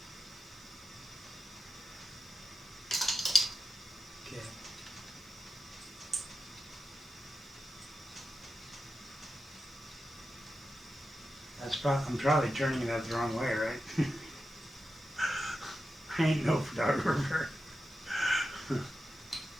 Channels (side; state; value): both; normal; correlation 0.91